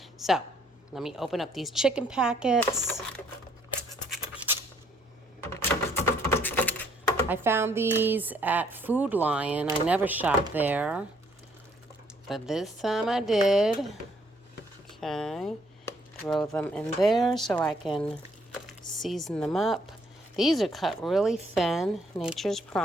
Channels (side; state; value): both; normal; correlation 0.66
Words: So let me open up these chicken packets. I found these at Food Lion. I never shopped there, but this time I did. Okay, throw them in there so I can season them up. These are cut really thin, Nature's